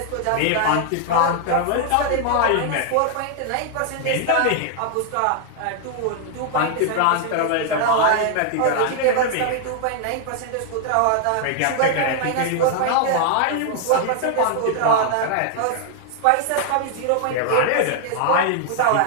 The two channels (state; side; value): different; both; correlation 0.00